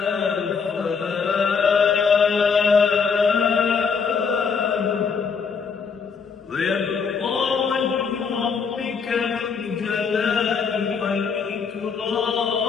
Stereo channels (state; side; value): quieter; right; 5.7 dB